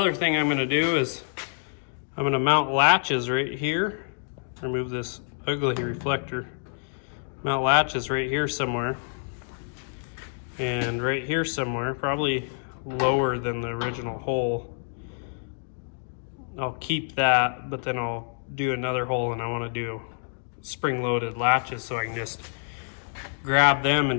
thing I'm going to do is I'm going to mount latches right here. Remove this ugly reflector. Mount latches right here somewhere, and right here somewhere, probably lower than the original hole. I'll keep that, but then I'll do another hole, and I want to do spring-loaded latches so I can just grab them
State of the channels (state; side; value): silent; right; digital silence